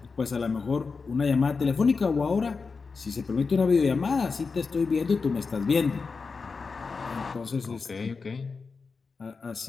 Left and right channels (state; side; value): quieter; right; 4.7 dB